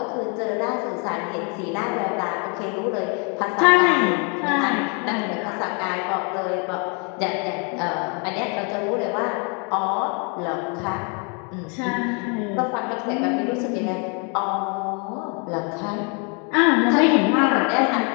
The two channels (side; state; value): right; quieter; 35.5 dB